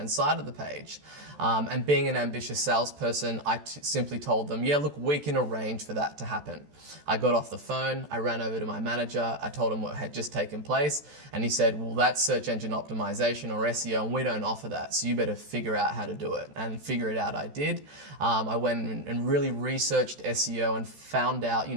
side of the page. And being an ambitious salesperson, I simply told them, yeah, look, we can arrange for that to happen. I got off the phone, I ran over to my manager, I told him what had just taken place, and he said, well, that's search engine optimization or SEO, and we don't offer that, so you better figure out how to do it. And figure it out I did. I went and really researched SEO and found out,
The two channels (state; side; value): late; left; 14 ms